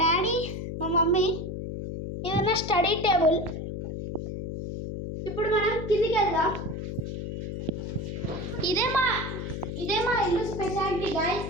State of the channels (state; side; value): noise; left; hum, 5 dB below the sound